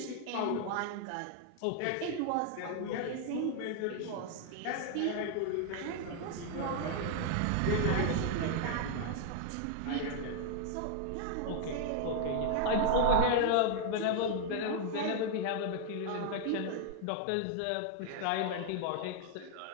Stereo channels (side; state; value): both; different; correlation 0.00